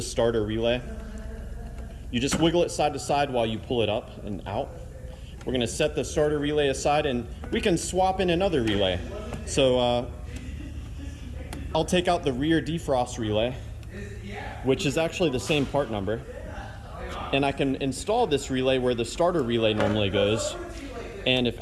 starter relay. You just wiggle it side to side while you pull it up and out. We're gonna set the starter relay aside and we can swap in another relay. So I'll take out the rear defrost relay, which is actually the same part number. And I can install this relay where the starter relay normally goes. And if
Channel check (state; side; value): identical; both; correlation 1.00